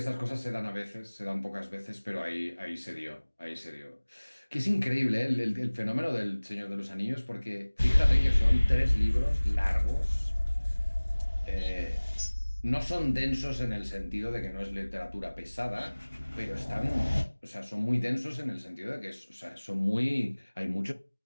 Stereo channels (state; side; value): inverted; both; correlation -1.00